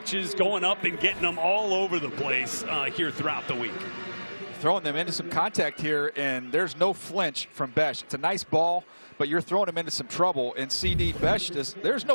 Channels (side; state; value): both; inverted; correlation -1.00